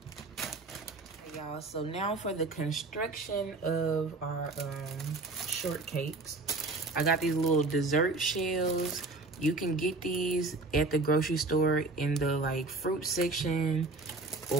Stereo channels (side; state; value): left; quieter; 3.2 dB